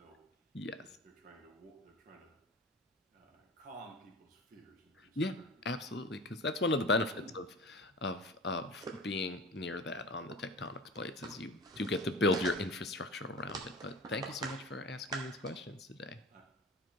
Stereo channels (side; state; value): both; normal; correlation 0.36